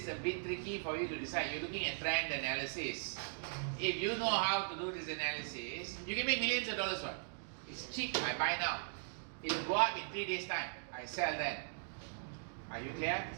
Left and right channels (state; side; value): silent; left; digital silence